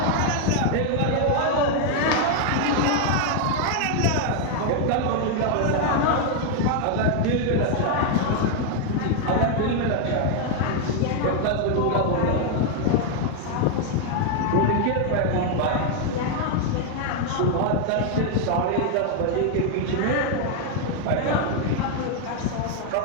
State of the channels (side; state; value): both; different; correlation 0.00